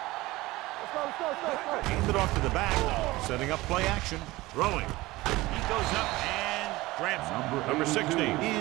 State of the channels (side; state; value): left; quieter; 19.5 dB